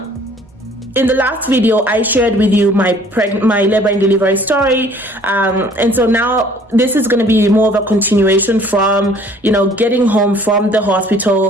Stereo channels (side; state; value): both; normal; correlation 0.55